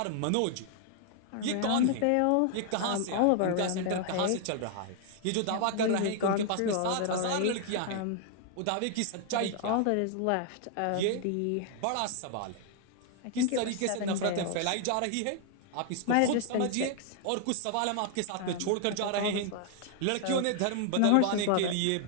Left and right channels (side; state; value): both; different; correlation 0.00